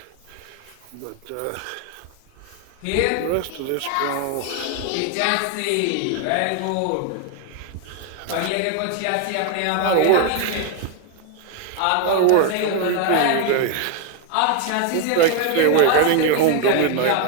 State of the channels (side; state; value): both; different; correlation 0.01